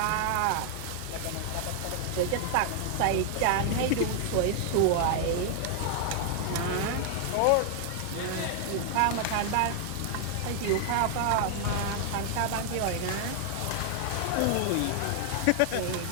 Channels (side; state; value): both; different; correlation 0.00